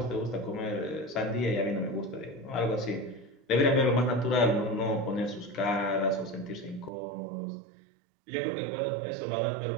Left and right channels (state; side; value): drops out; left; at 6.9 s